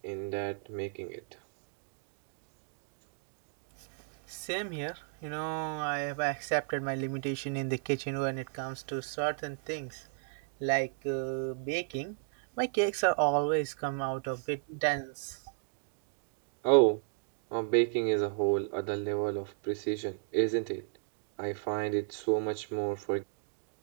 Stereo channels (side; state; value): left; silent; 55 dB below the other